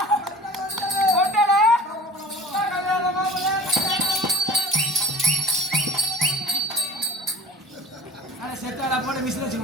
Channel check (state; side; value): normal; both; correlation 0.43